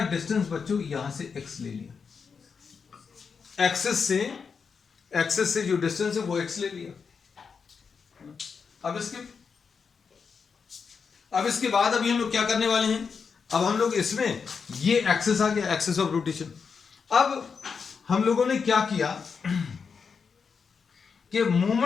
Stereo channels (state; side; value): quieter; right; 5.8 dB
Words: डिस्टेंस बच्चों यहां से x ले लिया, एक्सेस से जो डिस्टेंस है वो x ले लिया। अब इसके बाद अभी हम लोग क्या करने वाले हैं, अब हम लोग इसमें ये एक्सेस आ गया, एक्सेस ऑफ रोटेशन। अब हम लोगों ने क्या किया कि